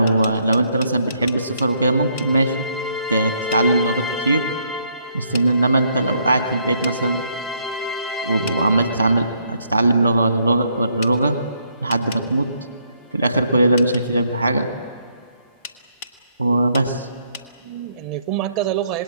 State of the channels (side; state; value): both; inverted; correlation -0.71